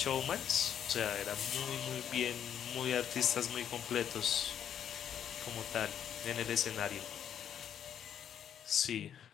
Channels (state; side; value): quieter; right; 9.2 dB